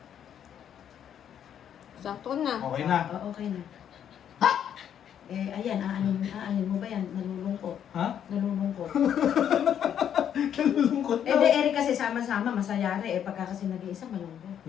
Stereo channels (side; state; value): right; quieter; 9.3 dB